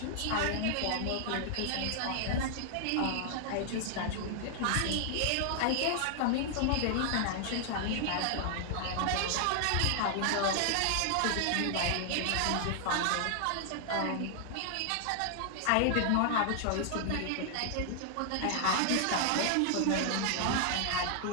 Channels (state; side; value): different; both; correlation 0.00